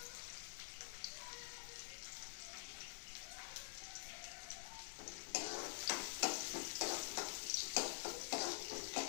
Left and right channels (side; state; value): right; silent; digital silence